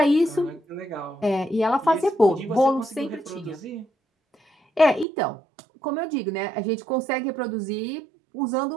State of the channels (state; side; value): drops out; left; at 5.1 s